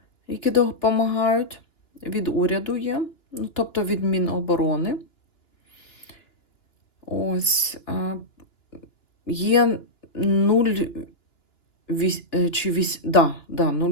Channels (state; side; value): late; right; 2.9 ms